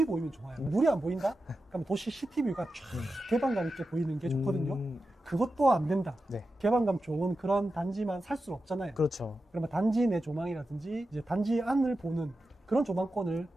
보이면 좋아요. 물이 안 보인다? 그럼 도시 시티뷰가 쫙 개방감 있게 보이는 게 좋거든요. 그것도 안 된다. 개방감 좋은 그런 단지만 살 수 없잖아요. 그렇죠. 그러면 단지 내 조망이라든지 이제 단지 안을 보는 그런 조망권을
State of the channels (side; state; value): both; normal; correlation 0.91